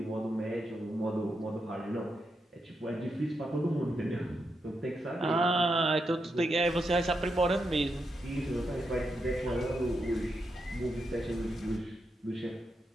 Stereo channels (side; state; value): both; normal; correlation 0.84